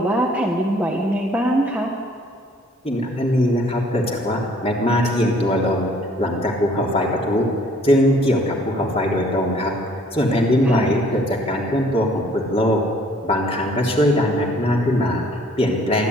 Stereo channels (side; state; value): both; normal; correlation 0.59